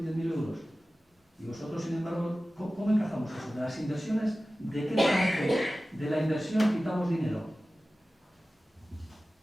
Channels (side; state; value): both; normal; correlation 0.96